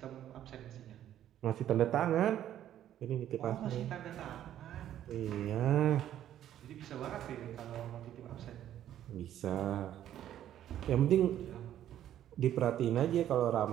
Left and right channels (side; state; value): left; quieter; 11.5 dB